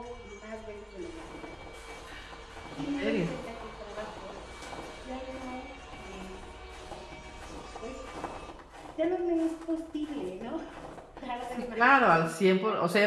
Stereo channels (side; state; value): both; identical; correlation 1.00